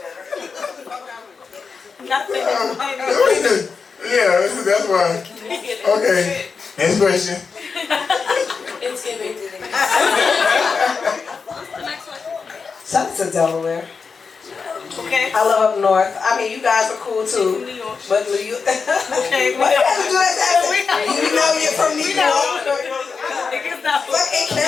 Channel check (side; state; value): right; quieter; 5.2 dB